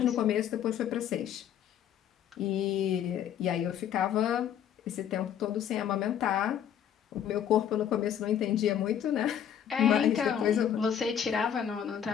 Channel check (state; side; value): quieter; right; 9.4 dB